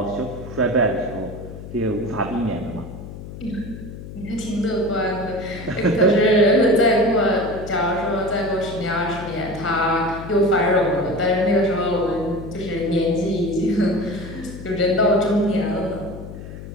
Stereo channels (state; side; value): noise; left; hum, 12 dB below the sound